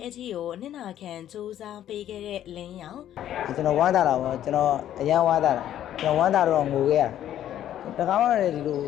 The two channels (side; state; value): right; quieter; 11.5 dB